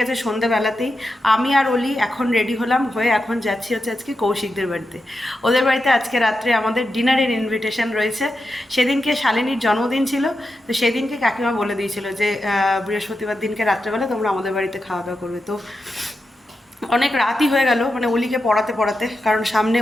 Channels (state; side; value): normal; both; correlation 0.89